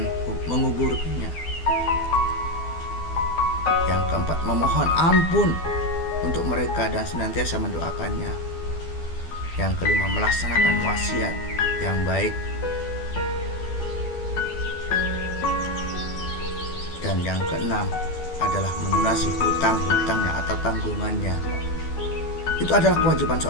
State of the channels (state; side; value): late; right; 12 ms